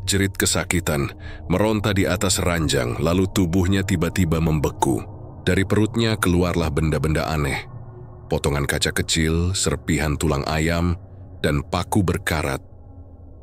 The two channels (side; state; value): both; identical; correlation 1.00